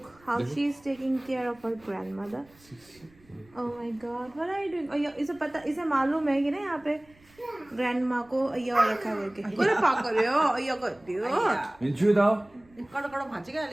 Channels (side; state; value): right; noise; rumble, 29 dB below the sound